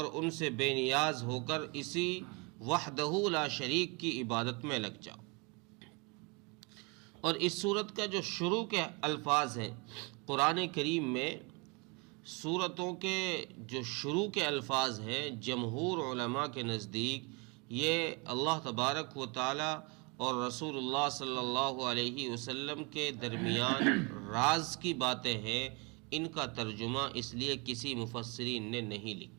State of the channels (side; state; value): left; quieter; 30.3 dB